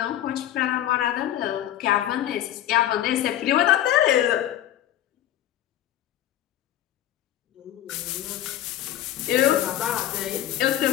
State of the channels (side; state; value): right; quieter; 12.3 dB